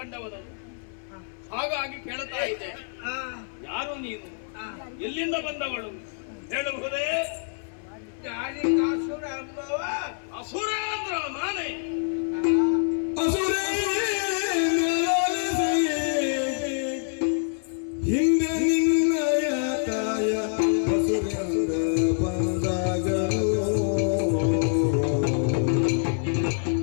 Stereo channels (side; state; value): right; silent; 61 dB below the other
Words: ಹಾಗಾಗಿ ಕೇಳ್ತಾ ಇದ್ದೆ, ಯಾರು ನೀನು? ಎಲ್ಲಿಂದ ಬಂದವಳು ಹೇಳಬಹುದೇ? ದಾರಿಕಾಸುರ ಎಂಬವ ಅಸುರ ಅಂದ್ರ ನಾನೇ. ಹಿಂದೆ ನಿನ್ನಯ ತಾಯ ಹಸುರ ಬಂದಾಗಲು